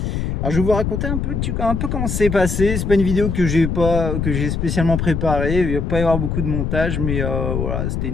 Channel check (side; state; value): left; noise; rumble, 1 dB below the sound